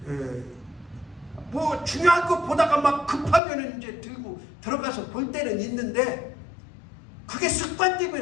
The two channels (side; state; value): right; drops out; at 3.4 s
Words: 뭐 중요한 거 보다가 막 급하면 이제 들고 들어가서 볼 때는 있는데, 그게